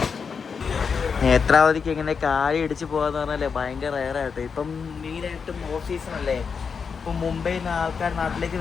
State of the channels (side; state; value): right; quieter; 5.9 dB